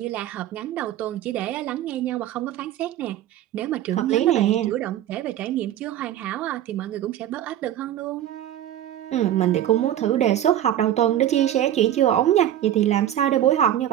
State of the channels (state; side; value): quieter; left; 11.8 dB